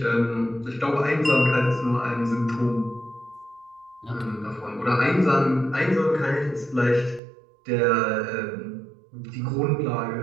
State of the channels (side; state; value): left; drops out; at 7.2 s